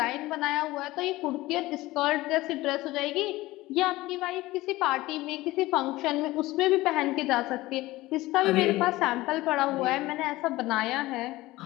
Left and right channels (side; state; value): right; quieter; 18.5 dB